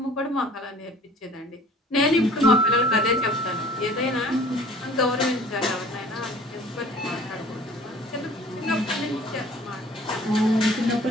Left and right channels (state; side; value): normal; both; correlation 0.49